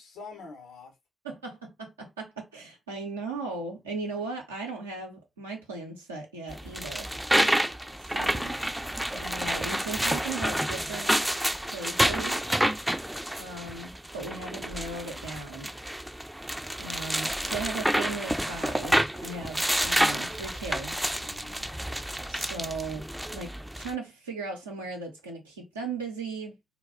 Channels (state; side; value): normal; both; correlation 0.88